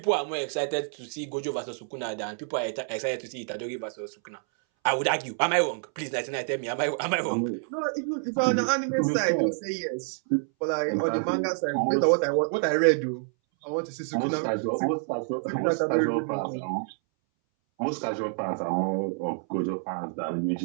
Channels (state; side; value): silent; left; 60 dB below the other